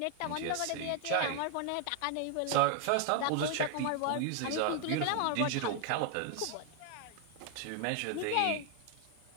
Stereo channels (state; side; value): different; both; correlation 0.00